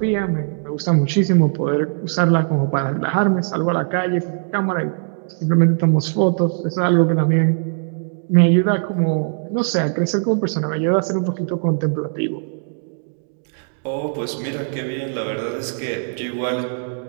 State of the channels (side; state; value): left; silent; digital silence